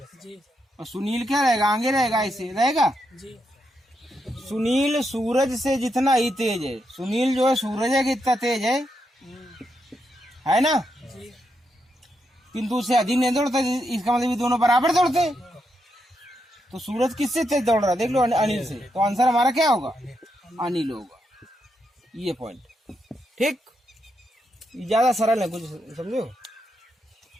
जी और सुनील क्या रहेगा? आगे रहेगा, ऐसे रहेगा। जी सुनील सूरज से जितना ही तेज है, सुनील जो है सूरज है कितना तेज है ना, जी किंतु उससे अधिक नहीं दौड़ता। इसका मतलब ये दोनों बराबर दौड़ते। तो सूरज किससे तेज दौड़ रहा है? देख लो, अनिल से। तो आंसर हमारा क्या होगा? अनिल होगा। ये पॉइंट ठीक, ज्यादा सरल है, कुछ समझो।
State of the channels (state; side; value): normal; both; correlation 0.82